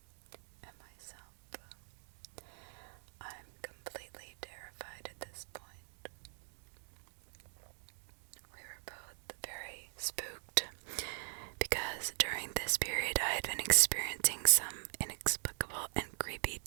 And myself. I'm completely terrified at this point. We were both very spooked because during this period I had been experiencing some inexplicable and creepy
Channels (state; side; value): silent; left; digital silence